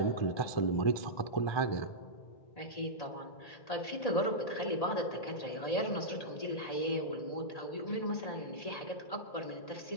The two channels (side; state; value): right; late; 1.8 ms